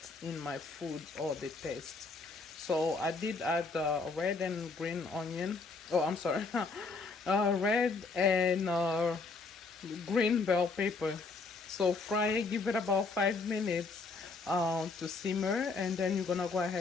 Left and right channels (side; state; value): right; quieter; 4.1 dB